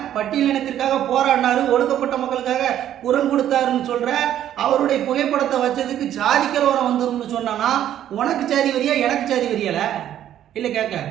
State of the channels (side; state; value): left; quieter; 11.2 dB